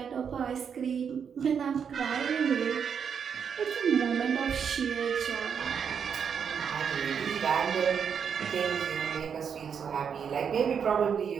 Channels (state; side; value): quieter; left; 7.1 dB